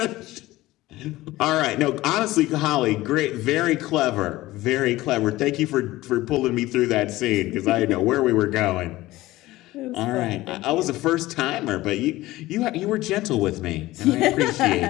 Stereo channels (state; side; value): quieter; right; 17.6 dB